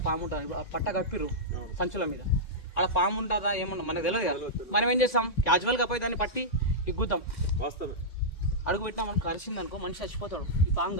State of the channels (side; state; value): right; late; 1.9 ms